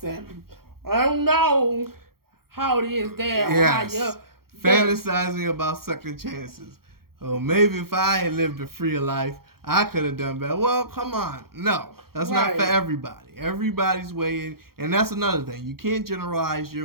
I don't know how it is there. Yes. Or how fantasizing about second chances. Oh, maybe if I had lived a freer life, I could have done better. Well, come on. No, that's not for everybody. Everybody's way in. And that's another thing. You can't generalize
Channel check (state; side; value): late; left; 0.94 ms